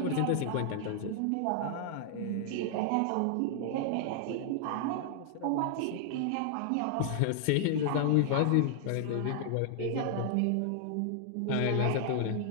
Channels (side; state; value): both; different; correlation -0.01